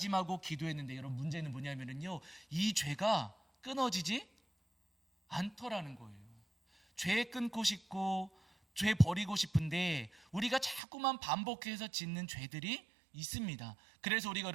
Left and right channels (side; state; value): left; drops out; at 10.8 s